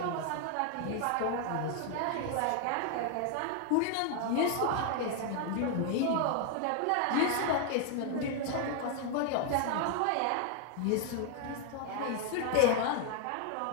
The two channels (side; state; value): both; different; correlation 0.00